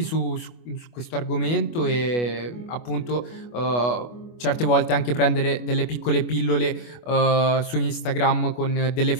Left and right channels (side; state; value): right; late; 25 ms